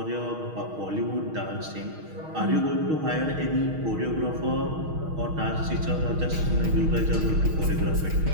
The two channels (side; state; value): left; late; 6.4 ms